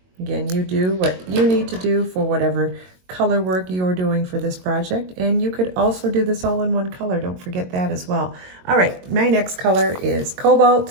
Again, you do what you need to do for whatever color work you're doing for this project. And you could also do this all in one color. Don't forget that as well. All right, my next color is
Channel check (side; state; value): left; late; 22 ms